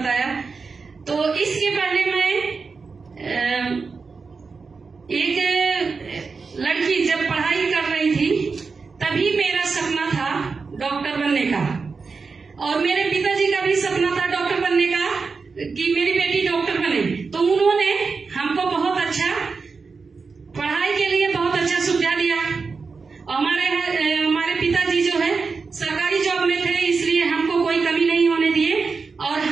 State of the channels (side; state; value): left; quieter; 4.7 dB